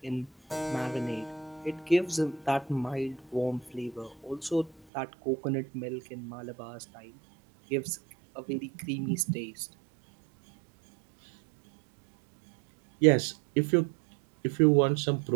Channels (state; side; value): drops out; left; at 4.8 s